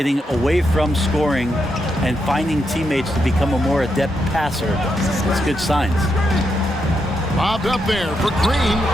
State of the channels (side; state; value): both; normal; correlation 0.82